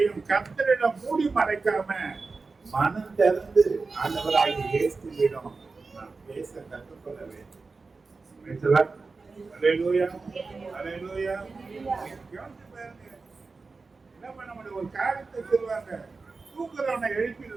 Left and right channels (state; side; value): quieter; left; 4.1 dB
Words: கர்த்தரிடம் மூடி மறைக்காம மனம் திறந்து ஆண்டவராகிய இயேசுவிடம் நாம் பேச கற்றுக்கொள்ள வேண்டும். அல்லேலூயா, அல்லேலூயா. என்ன பண்ண முடியும்? ஒரு காரியத்தை சொல்லுவாங்க, தூக்குறவனை